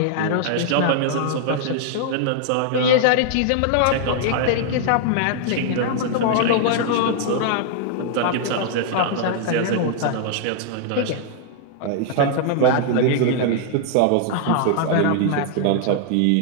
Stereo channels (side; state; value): both; different; correlation -0.01